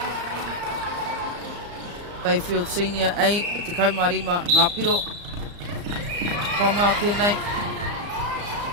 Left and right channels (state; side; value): late; left; 34 ms